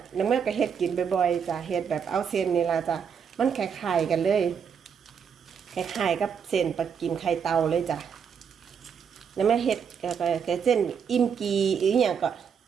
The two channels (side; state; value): left; quieter; 7.0 dB